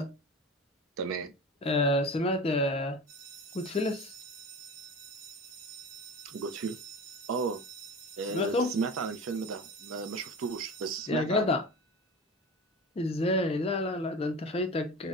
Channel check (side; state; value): both; normal; correlation 0.32